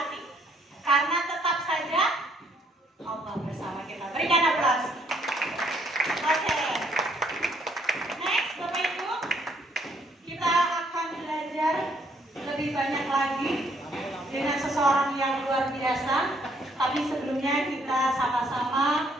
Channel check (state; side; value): normal; both; correlation 0.67